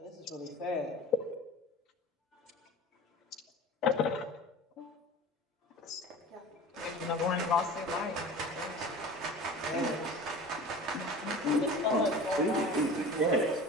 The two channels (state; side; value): normal; both; correlation 0.37